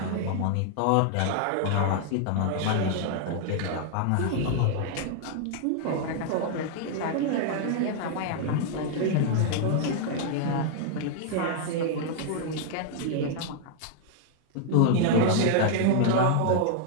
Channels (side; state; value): both; different; correlation 0.00